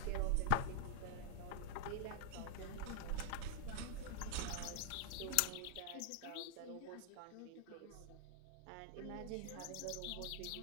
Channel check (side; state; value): both; different; correlation -0.01